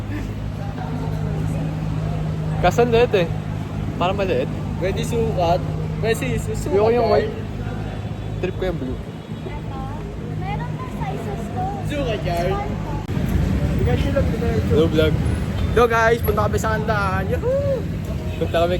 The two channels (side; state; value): both; identical; correlation 1.00